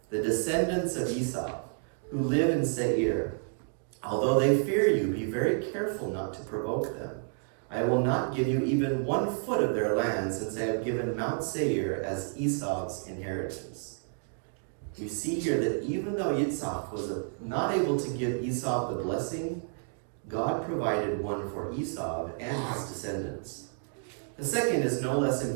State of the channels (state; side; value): silent; left; 58 dB below the other